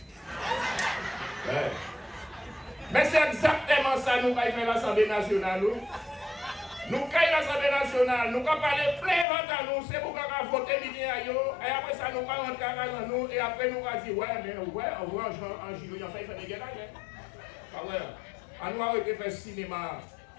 Mais c'est exactement ça nous avons fait l'Assemblée nationale. Nous avons l'Assemblée nationale, nous avons parlé plein à nous, c'est pour qu'on a voté midi à eux, et après ça nous avons rentré à nous, et après nous avons dit, ouais, mais ouais, on voit en juillet, on fait des guerres. Ah ouais, on nous a arrêté faire cinéma.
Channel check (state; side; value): drops out; right; at 9.2 s